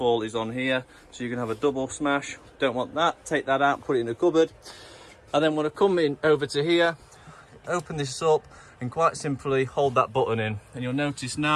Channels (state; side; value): identical; both; correlation 1.00